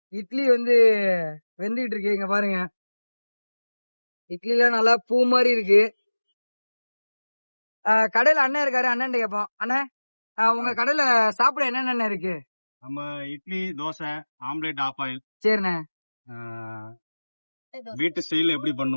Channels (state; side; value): inverted; both; correlation -1.00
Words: இட்லி வந்து வெந்துகிட்டு இருக்கு. இங்க பாருங்க, இட்லிலாம் நல்லா பூ மாதிரி இருக்கு. கடையில அண்ணன் இருக்காரு, அண்ணன் கேட்போம். அண்ணன், உங்க கடையில சாப்பிட என்னென்ன இருக்கு? நம்ம idli, dosa, omelette, half boil. சரிண்ணே. வீட்டு ஸ்டைல் எப்படி